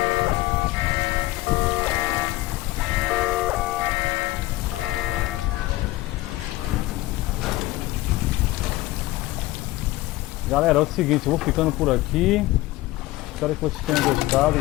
Galera, é o seguinte, eu vou ficando por aqui. Espero que vocês tenham gostado,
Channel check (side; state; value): right; quieter; 18.3 dB